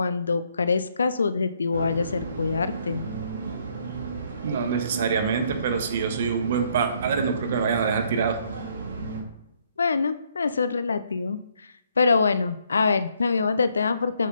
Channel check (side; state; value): both; inverted; correlation -0.69